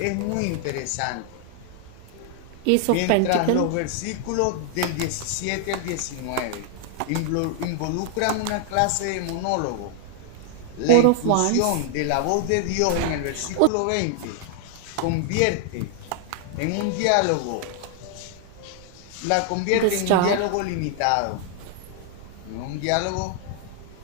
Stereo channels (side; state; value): both; different; correlation 0.00